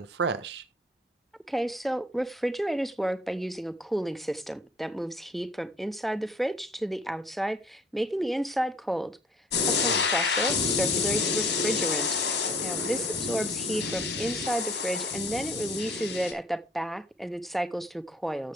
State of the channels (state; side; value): normal; both; correlation 0.56